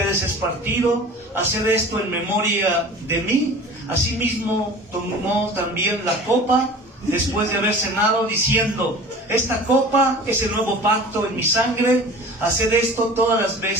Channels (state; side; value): normal; both; correlation 0.40